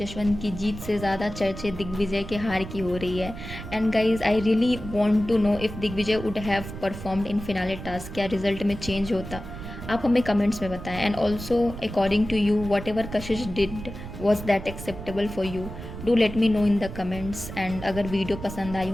की जीत से ज़्यादा चर्चे दिग्विजय के हार की हो रही है। And guys, I really want to know if Digvijay would have performed in finale task, क्या रिजल्ट में चेंज होता, आप हमें कमेंट्स में बताएं। And also according to you, whatever Kashish did was that acceptable for you, do let me know in the comments. And अगर video पसंद आई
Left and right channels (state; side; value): noise; right; rumble, 10 dB below the sound